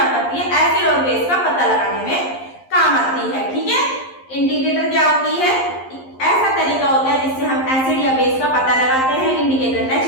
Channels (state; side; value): late; right; 11 ms